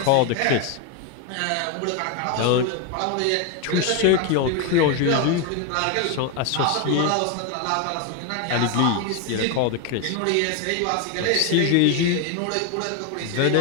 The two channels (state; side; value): different; both; correlation 0.01